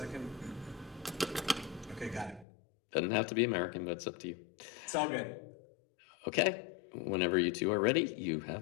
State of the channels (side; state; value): right; drops out; at 2.5 s